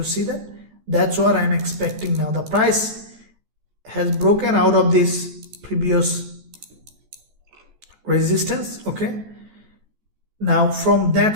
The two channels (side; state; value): left; late; 14 ms